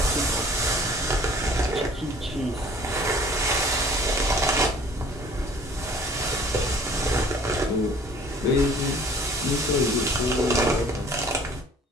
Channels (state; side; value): normal; both; correlation 0.51